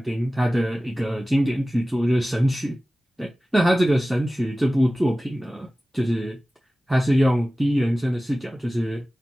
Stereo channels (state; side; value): normal; both; correlation 0.97